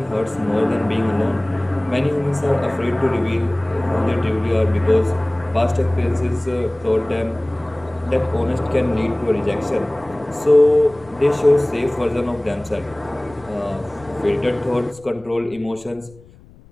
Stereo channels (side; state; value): left; noise; rumble, 24 dB below the sound